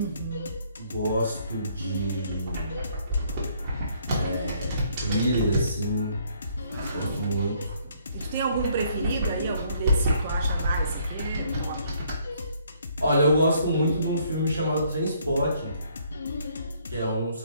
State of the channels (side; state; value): both; inverted; correlation -0.65